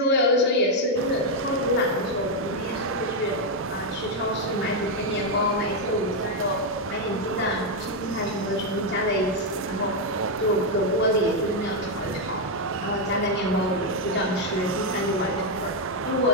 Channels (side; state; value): both; normal; correlation 0.02